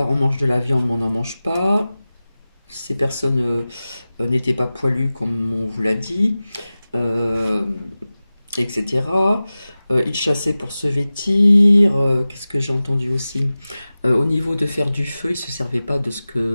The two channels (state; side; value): inverted; both; correlation -0.96